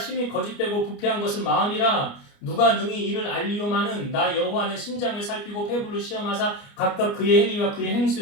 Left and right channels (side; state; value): right; late; 29 ms